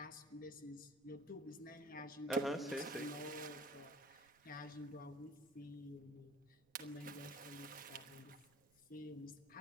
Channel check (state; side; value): noise; right; rumble, 29 dB below the sound